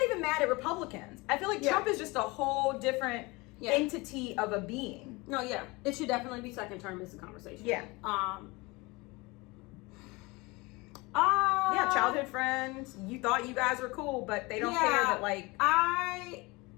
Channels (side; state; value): right; quieter; 24.4 dB